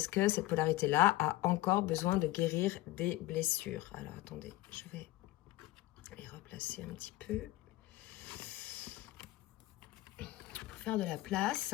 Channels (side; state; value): right; quieter; 17.1 dB